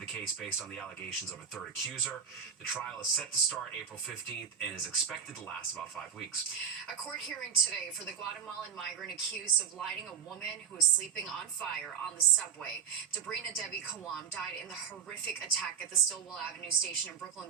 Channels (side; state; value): left; quieter; 8.0 dB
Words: case based on the allegations of a third accuser. The trial is set to start April 15th and is expected to last about 5 weeks. A court hearing today for the Guatemalan migrant accused of lighting a woman who was sleeping on fire on the subway. Debrina Debbie Kawam died in the horrific attack at the Stillwell Avenue station in Brooklyn